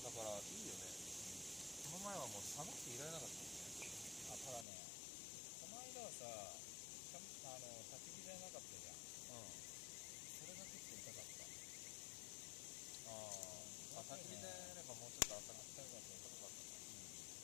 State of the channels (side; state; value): right; drops out; at 4.7 s